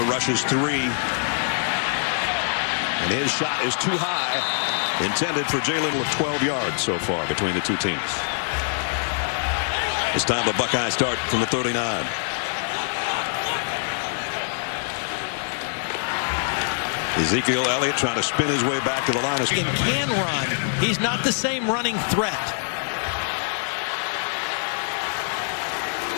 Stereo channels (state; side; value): silent; right; digital silence